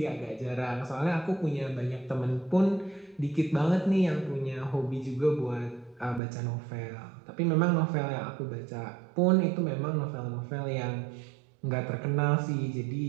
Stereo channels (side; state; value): left; drops out; at 6.2 s